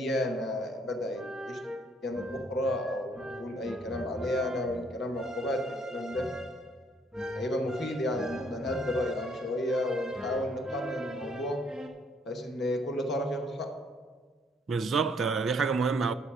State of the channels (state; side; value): normal; both; correlation 0.66